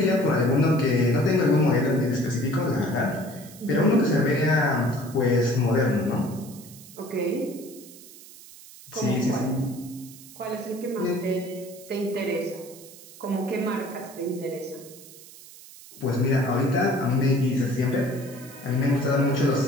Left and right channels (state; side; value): noise; right; hiss, 19 dB below the sound